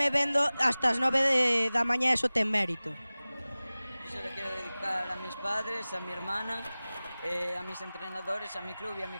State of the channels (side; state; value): both; inverted; correlation -0.98